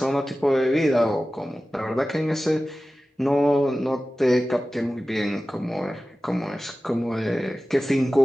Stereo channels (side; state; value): both; normal; correlation 0.95